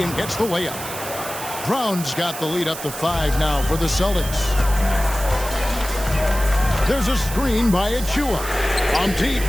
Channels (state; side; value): noise; right; hiss, 10 dB below the sound